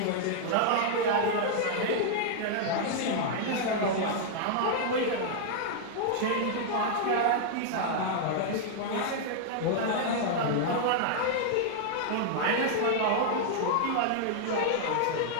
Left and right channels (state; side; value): different; both; correlation -0.01